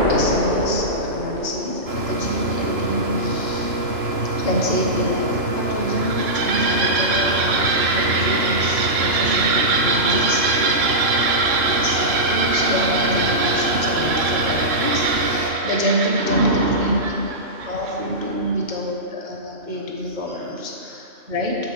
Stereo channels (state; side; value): late; left; 2.9 ms